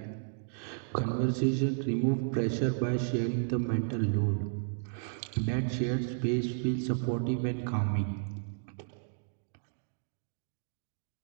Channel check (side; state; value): left; silent; digital silence